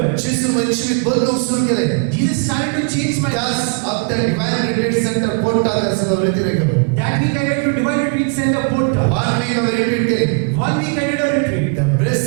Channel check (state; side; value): quieter; left; 36.7 dB